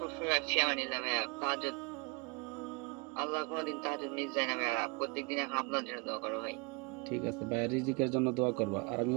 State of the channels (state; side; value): quieter; left; 30.7 dB